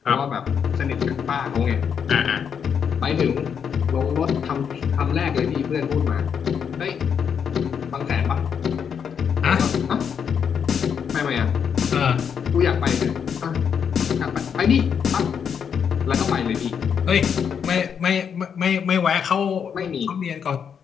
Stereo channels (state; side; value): quieter; right; 7.3 dB